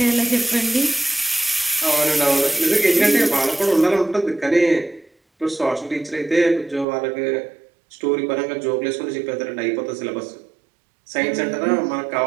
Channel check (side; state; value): left; drops out; at 6.9 s